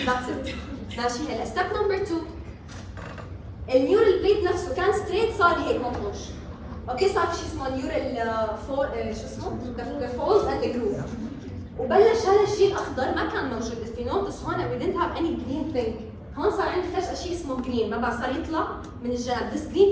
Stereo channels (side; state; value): both; identical; correlation 1.00